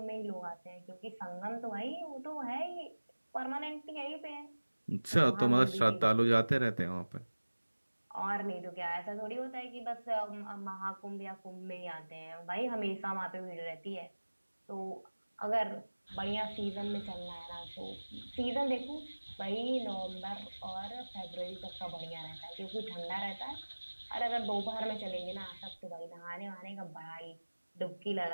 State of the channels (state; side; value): inverted; both; correlation -1.00